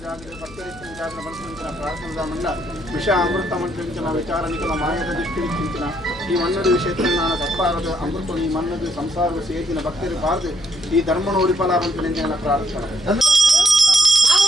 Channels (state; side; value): noise; left; hum, 19 dB below the sound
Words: ವಿಷ ಅಮೃತ ಮಂತ್ರಿಂచిన ವಿಚಾರ ನಿಖಲ ಮಾಯದ ದೃಷ್ಟಿಂచిన ಈ ಮನ್ನದು ವಿಷಯತ್ರಜ್ಞಾನ ತಪ್ಪಾರದು ಅಮೃತ ಈ ಮನ್ನದು ಸಂಸಾರದ ಸೇತಿನ ಭಕ್ತರು ಬಾರದು ಈ ಧರ್ಮನ ಉಳಿಪಲಾರಂತ ಪ್ರಾರ್ಥನೆ